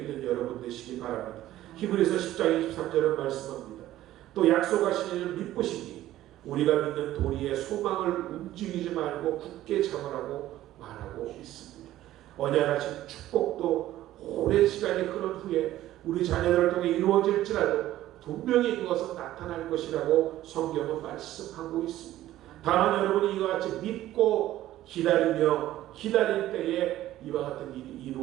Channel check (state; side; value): quieter; left; 14.2 dB